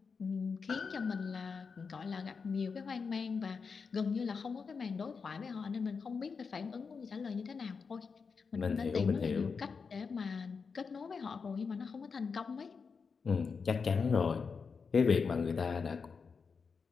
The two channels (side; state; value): right; quieter; 5.3 dB